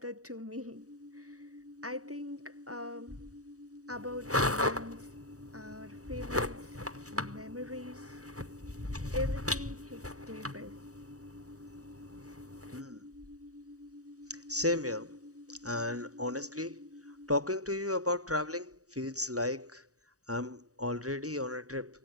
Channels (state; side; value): late; left; 0.66 ms